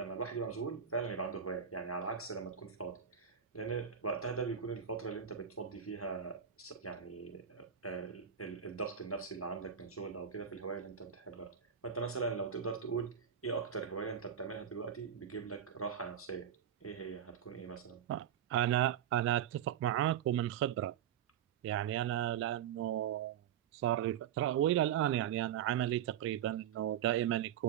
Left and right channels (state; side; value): quieter; left; 9.0 dB